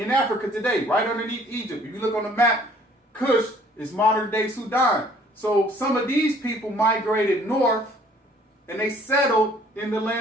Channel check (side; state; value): both; normal; correlation 0.57